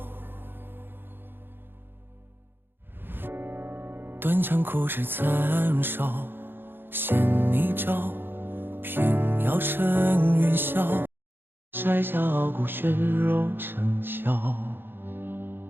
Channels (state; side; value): late; left; 0.10 ms